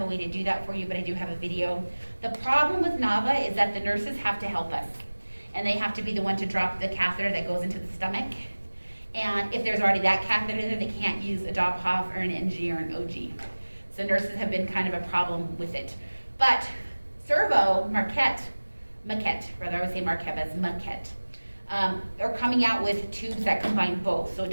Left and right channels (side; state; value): both; inverted; correlation -1.00